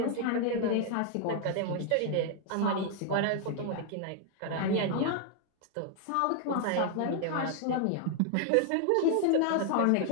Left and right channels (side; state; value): both; different; correlation 0.00